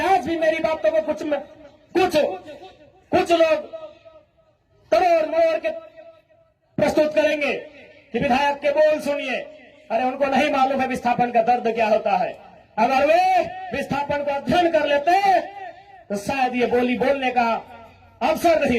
आज भी मेरी बातों को कुछ लोग तोड़ मोड़ के प्रस्तुत करेंगे कि विधायक के बोल सुनिए। अरे उनको नहीं मालूम है विस्थापन का दर्द क्या होता है। अगर वे विस्थापन को अध्ययन कर लेते तो शायद ये बोली बोलने का अवसर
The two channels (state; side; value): identical; both; correlation 1.00